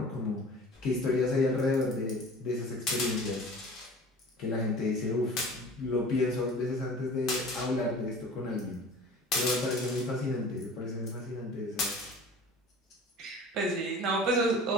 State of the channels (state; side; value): normal; both; correlation 0.42